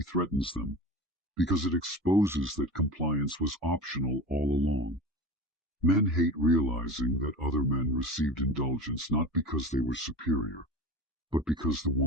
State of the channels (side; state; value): both; normal; correlation 0.32